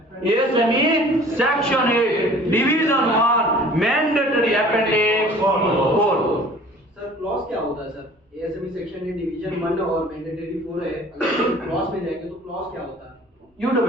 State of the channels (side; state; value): both; normal; correlation 0.48